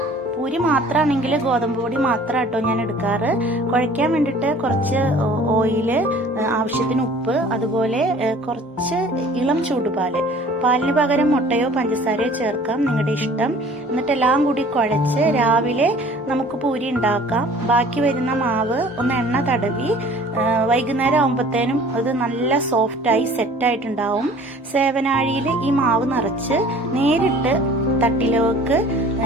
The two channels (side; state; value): both; normal; correlation 0.49